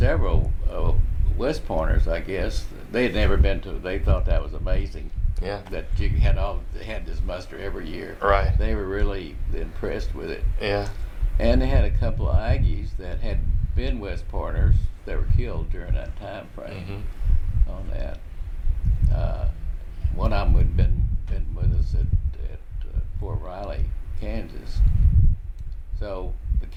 West Pointers, I guess. They had never been to, they thought that was amazing. Yeah. That you had this muster every year. Right. They were really impressed with it. Yeah. And they had a couple of Aggies that had been West Pointers that were killed during that time frame on that. One of them had been with us at Fort Riley, Kansas. So we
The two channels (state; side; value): identical; both; correlation 1.00